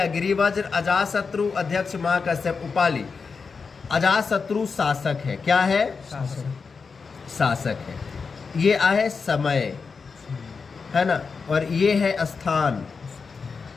गिरिवज्र, अजातशत्रु, अध्यक्ष महाकश्यप उपाली। अजातशत्रु शासक है। क्या है? शासक है। ये आहे समय, है ना, और ये है स्थान,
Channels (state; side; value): quieter; right; 5.1 dB